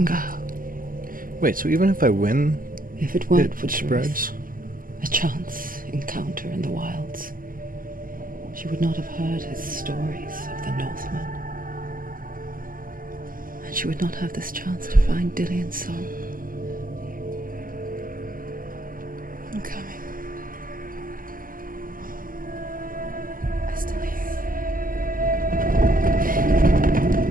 go. Wait, so even if I win, If it weren't for it Truth, spreads? a chance encounter in the wilds, she would not have heard his stories of the Northmen. And she would not have this chance to find Dillion's soul. I'm coming. I still hear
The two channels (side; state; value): left; late; 0.41 ms